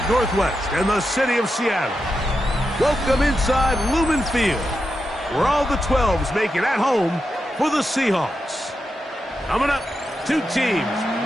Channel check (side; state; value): both; normal; correlation 0.87